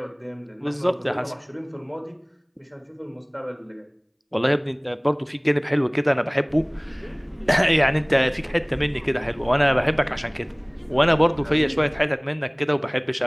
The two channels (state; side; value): identical; both; correlation 1.00